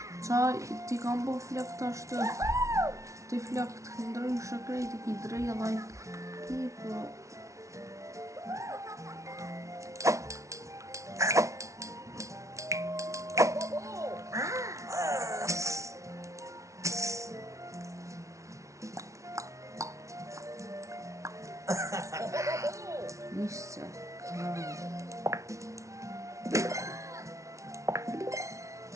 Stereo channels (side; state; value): left; late; 0.14 ms